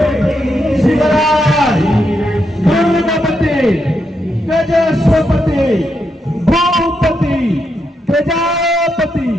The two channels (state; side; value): normal; both; correlation 0.82